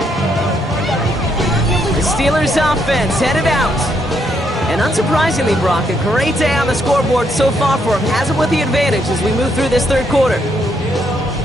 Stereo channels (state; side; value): normal; both; correlation 0.75